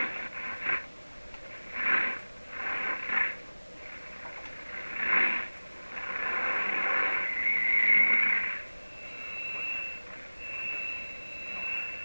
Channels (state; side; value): inverted; both; correlation -1.00